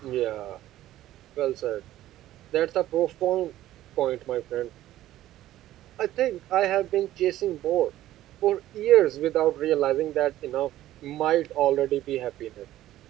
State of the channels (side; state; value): left; quieter; 14.1 dB